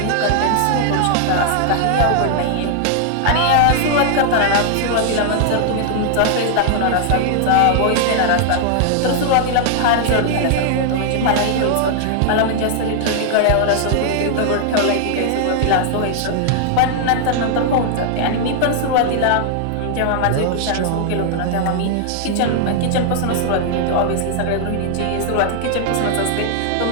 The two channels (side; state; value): both; different; correlation 0.00